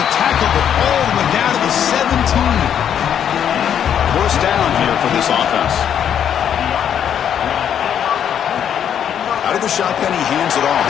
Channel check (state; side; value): quieter; right; 9.0 dB